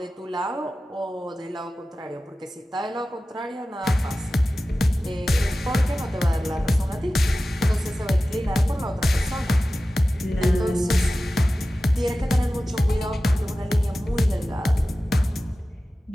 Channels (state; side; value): normal; both; correlation 0.95